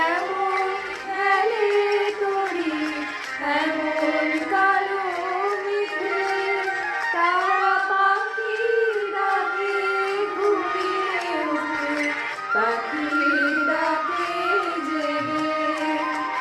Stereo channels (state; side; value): identical; both; correlation 1.00